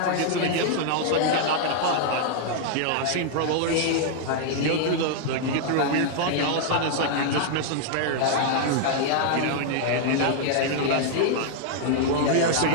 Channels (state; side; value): different; both; correlation -0.01